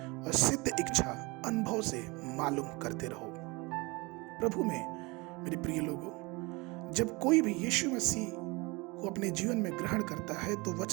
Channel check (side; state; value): left; quieter; 25.4 dB